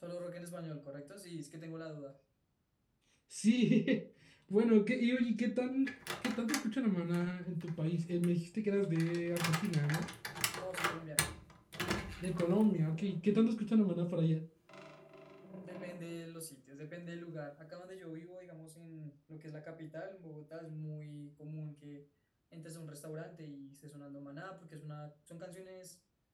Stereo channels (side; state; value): both; identical; correlation 1.00